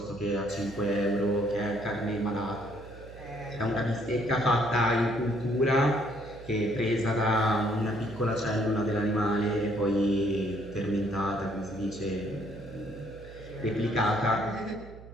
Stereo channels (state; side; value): noise; right; hum, 17 dB below the sound